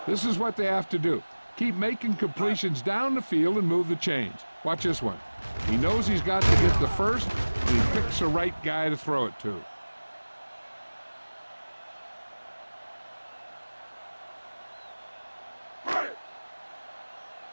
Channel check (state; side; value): inverted; both; correlation -1.00